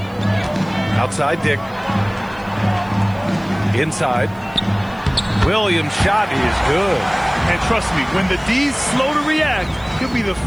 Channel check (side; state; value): left; noise; hiss, 29 dB below the sound